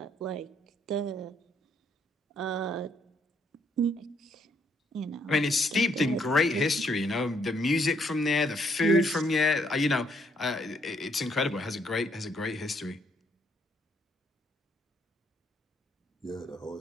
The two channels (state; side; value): normal; both; correlation 0.71